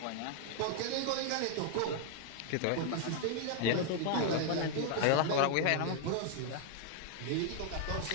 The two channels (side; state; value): both; different; correlation 0.00